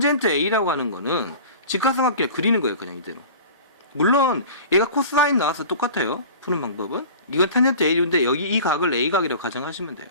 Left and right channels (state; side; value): inverted; both; correlation -0.39